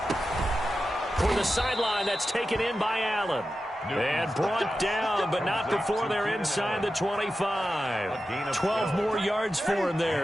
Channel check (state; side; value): normal; both; correlation 0.92